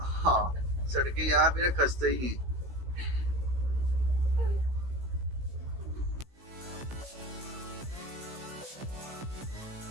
सड़कें यहाँ पे ना खस्ते ही हैं।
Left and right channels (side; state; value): left; late; 16 ms